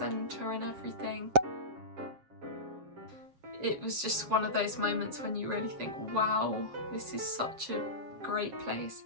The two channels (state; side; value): late; left; 7.3 ms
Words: and everything. It was just one of those moments when you really think, wow, this is such a great place.